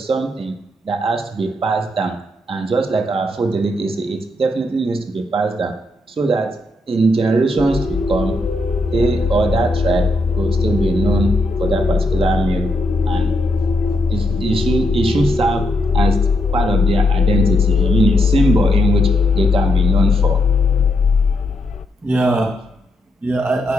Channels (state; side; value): normal; both; correlation 0.80